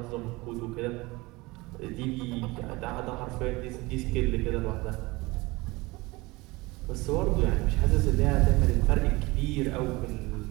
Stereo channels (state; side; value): quieter; left; 22.7 dB